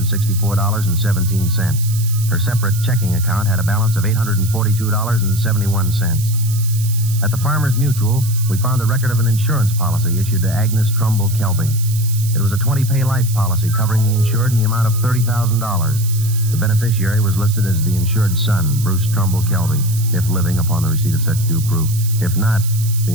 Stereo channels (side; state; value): right; noise; hiss, 11 dB below the sound